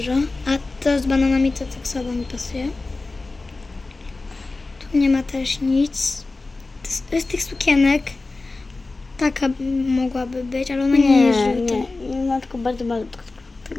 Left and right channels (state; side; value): quieter; right; 3.4 dB